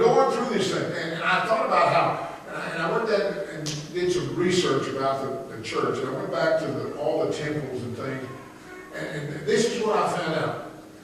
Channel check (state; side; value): identical; both; correlation 1.00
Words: through this thing, and I thought about how, and I went there and did some research about the church, and I went back to all the temples and things, and this is what I found out.